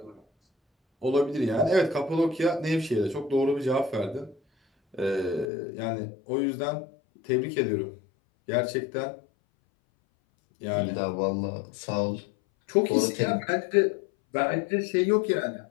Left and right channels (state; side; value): drops out; right; at 5.5 s